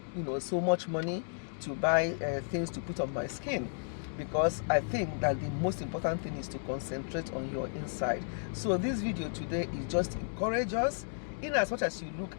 much money to buy things to put on my skin, because I think that the most important thing is to concentrate on your inside. So this video today is just to encourage us in as much as you look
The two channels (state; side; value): silent; right; digital silence